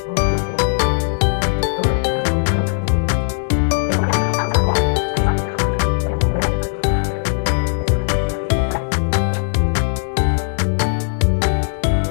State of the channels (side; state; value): right; silent; digital silence